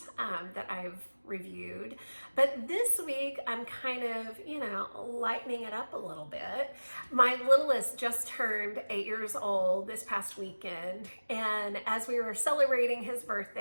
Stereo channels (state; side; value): inverted; both; correlation -1.00